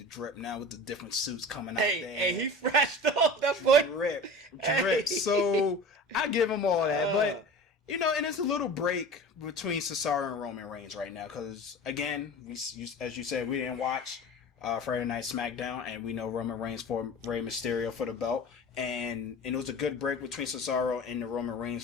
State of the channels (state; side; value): normal; both; correlation 0.36